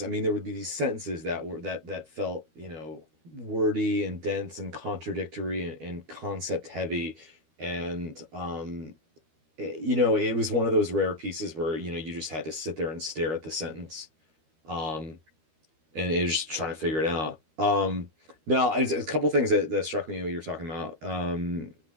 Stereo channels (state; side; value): late; left; 13 ms